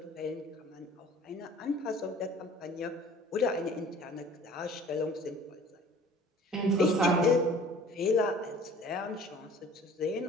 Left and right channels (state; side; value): normal; both; correlation 0.49